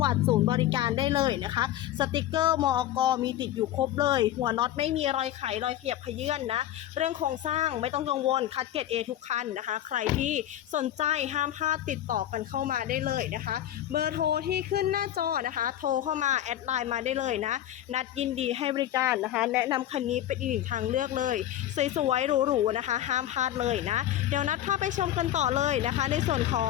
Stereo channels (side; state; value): right; quieter; 12.5 dB